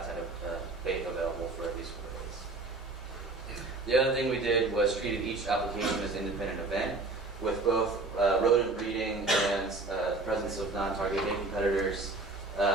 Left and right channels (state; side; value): quieter; left; 3.4 dB